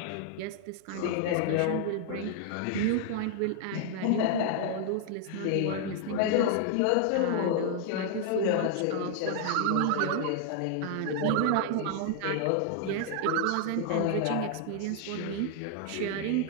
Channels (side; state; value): both; different; correlation 0.00